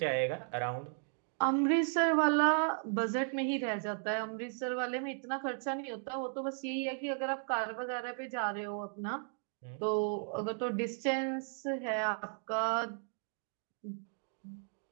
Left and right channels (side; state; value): left; silent; 54 dB below the other